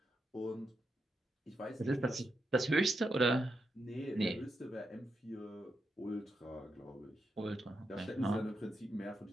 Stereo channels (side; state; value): both; normal; correlation 0.85